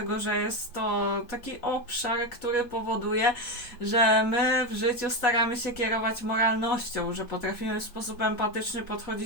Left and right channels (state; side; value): late; right; 4.0 ms